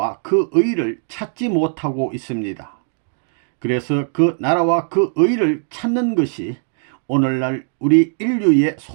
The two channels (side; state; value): left; silent; 66 dB below the other